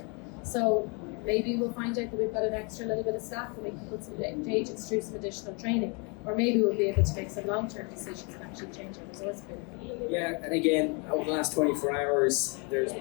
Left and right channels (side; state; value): right; quieter; 34.0 dB